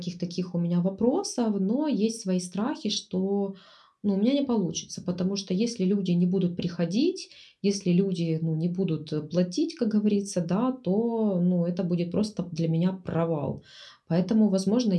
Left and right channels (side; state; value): both; identical; correlation 1.00